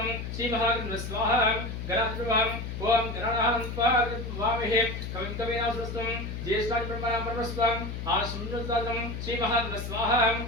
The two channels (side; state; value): left; noise; hum, 6 dB below the sound